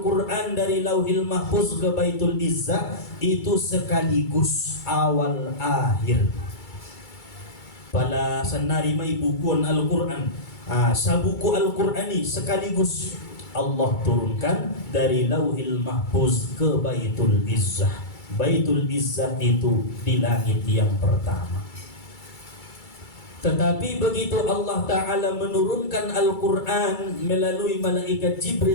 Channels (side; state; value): right; late; 2.3 ms